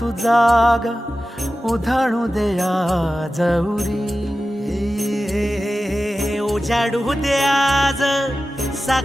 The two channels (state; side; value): normal; both; correlation 0.94